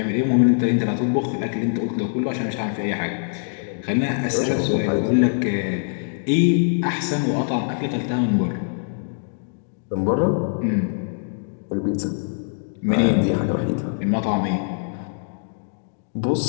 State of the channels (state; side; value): silent; right; digital silence